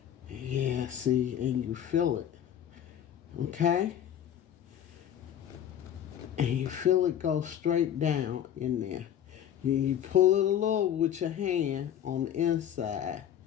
yeah, see, and you feel it. Okay? And you feel it go straight down in there. You pull it a little with your hand on the inside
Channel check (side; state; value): right; quieter; 10.1 dB